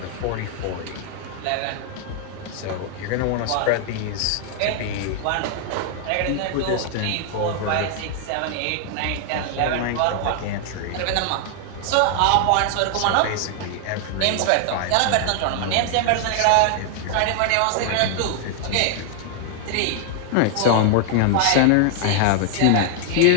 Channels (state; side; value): different; both; correlation 0.00